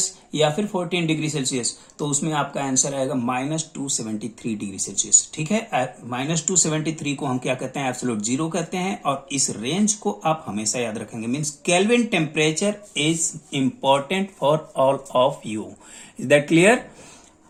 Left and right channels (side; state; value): both; identical; correlation 1.00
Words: या फिर 14 डिग्री सेल्सियस। तो उसमें आपका आंसर आएगा -273 डिग्री सेल्सियस। ठीक है, -273 को हम क्या कहते हैं, एब्सोल्यूट जीरो कहते हैं। और इस रेंज को आप हमेशा याद रखेंगे। Means kelvin temperature is important for all of you. Is that clear?